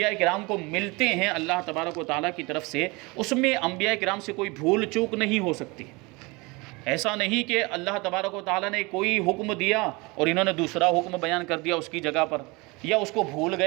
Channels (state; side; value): quieter; left; 25.7 dB